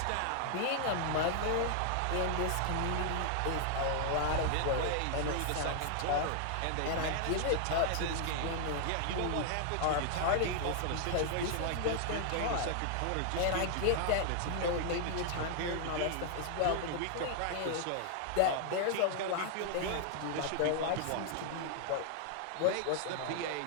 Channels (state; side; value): different; both; correlation 0.00